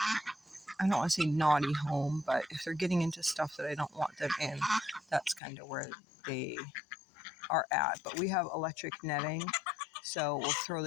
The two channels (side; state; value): right; drops out; at 5.4 s